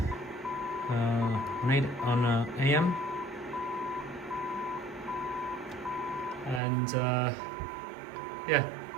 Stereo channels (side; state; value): left; drops out; at 6.6 s